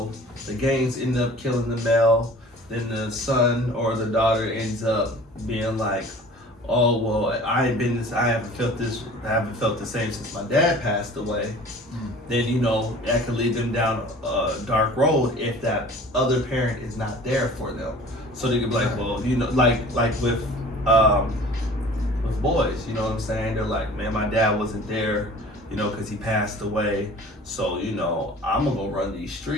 the gangs end up killing the male, then the son or the daughter ends up being like, oh well, I haven't felt the same since my dad passed away. Then, you know, that could lead them down a dark road if that other parent is not there for them. So they could be like, well, you know, like with boys, you know what I'm saying? They're like, man, my dad wasn't there, you know, because he passed away. So, you know, I'm gonna go run these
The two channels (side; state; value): both; normal; correlation 0.45